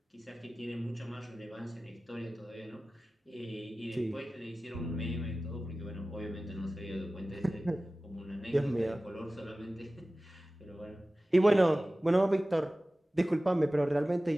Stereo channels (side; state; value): both; normal; correlation 0.97